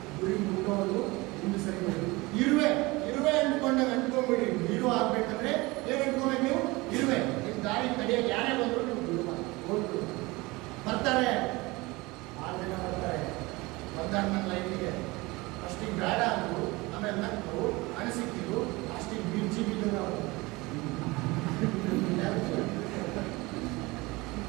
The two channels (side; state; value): left; quieter; 22.9 dB